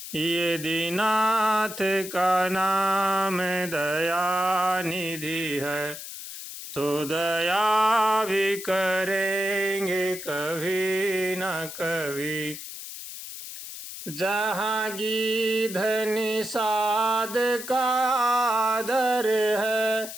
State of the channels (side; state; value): left; noise; hiss, 10 dB below the sound